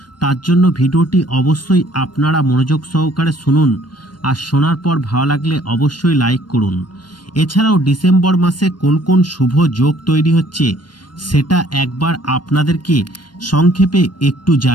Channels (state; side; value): late; right; 0.71 ms